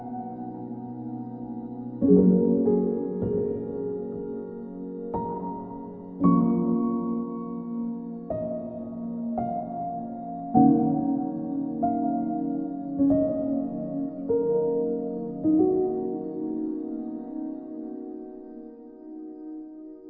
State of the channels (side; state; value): both; identical; correlation 1.00